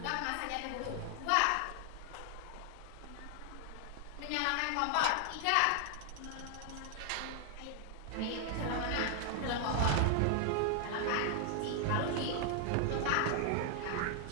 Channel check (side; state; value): both; different; correlation 0.00